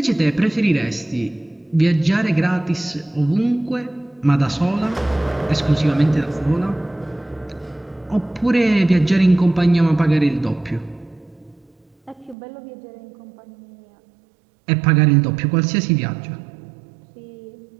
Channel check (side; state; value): left; drops out; at 12.4 s